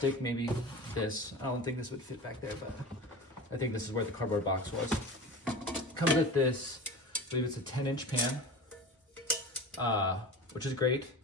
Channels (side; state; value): both; normal; correlation 0.32